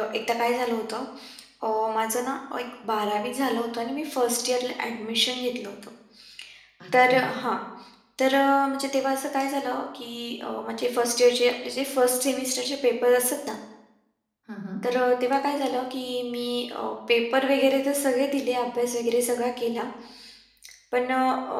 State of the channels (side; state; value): both; identical; correlation 1.00